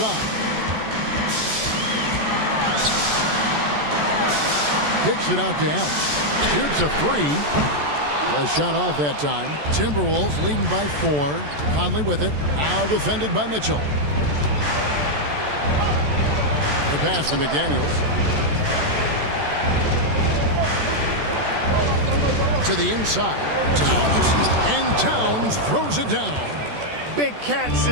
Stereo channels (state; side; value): late; left; 14 ms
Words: Kicks it out to Allen. Shoots a three. A shot off that time. Timberwolves leading by 4. Conley with it. Now defended by Mitchell. The pass to McDaniels. To the inside. Towns. And Towns throws it down. Big Cat